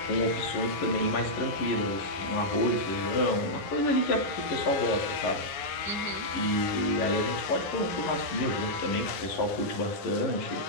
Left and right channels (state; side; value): late; right; 11 ms